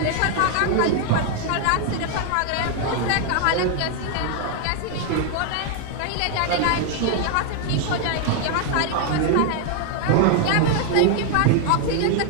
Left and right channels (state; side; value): different; both; correlation 0.00